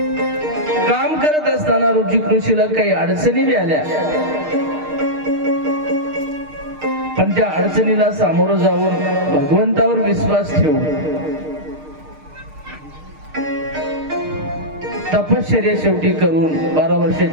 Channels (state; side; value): late; left; 6.6 ms